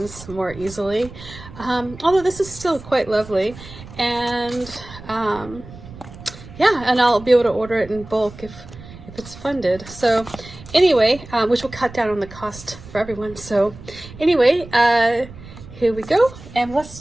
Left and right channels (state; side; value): noise; right; rumble, 17 dB below the sound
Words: more easily. Although this is still quite lovely, and yeah, and I'll be able to order it in bulk if it's funded. So anyway, which will cut down on the cost for everyone. So anyway, here we go, and let's